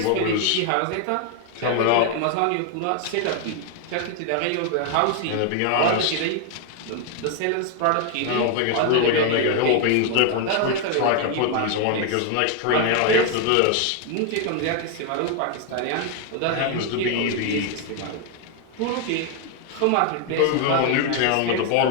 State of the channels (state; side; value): different; both; correlation 0.01